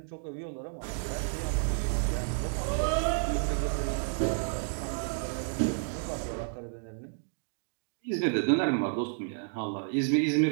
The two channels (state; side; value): silent; left; digital silence